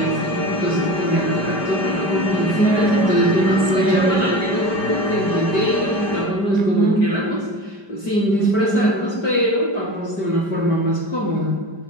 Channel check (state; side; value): late; right; 5.1 ms